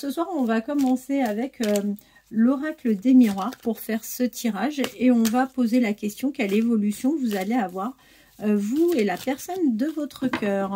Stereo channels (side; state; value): both; identical; correlation 1.00